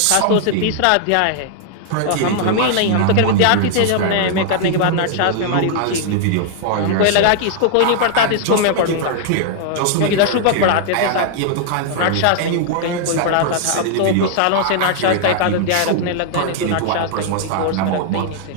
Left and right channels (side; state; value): both; different; correlation -0.01